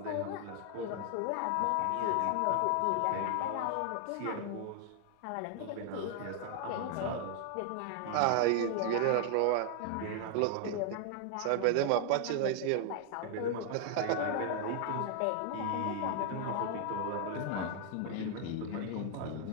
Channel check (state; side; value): different; both; correlation 0.00